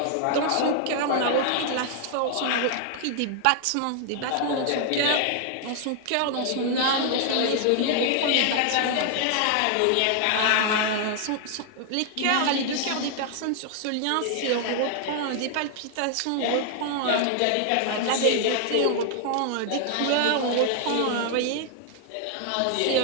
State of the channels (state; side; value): different; both; correlation 0.00